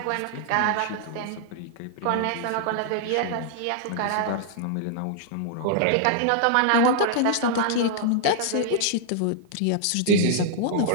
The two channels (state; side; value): different; both; correlation -0.01